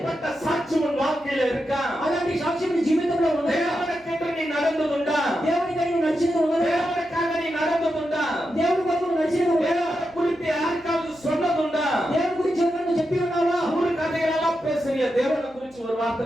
சாட்சி உன் வாழ்க்கையில இருக்கா? అలాంటి సాక్ష్యం నీ జీవితంలో ఉందా? దేవునికంటే నీ నడந்துందా? దేవునికై నువ్వు నడిచినది ఉన్నదా? దేవునికాக నీ నడந்துందా? దేవుని కొరకు నువ్వు నడిచినది ఉన్నదా? దేవుని గురించి யாருக்காவது சொன்னதுண்டா? దేవుని గురించి ఎవరైనా నువ్వు చెప్పి ఉన్నావా? ஊரு கதைகளெல்லாம் பேசுறியா? தேவனை குறிச்சு ஒரு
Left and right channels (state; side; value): noise; right; hum, 30 dB below the sound